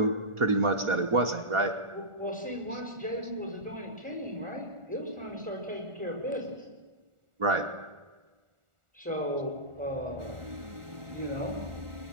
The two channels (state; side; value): late; left; 1.4 ms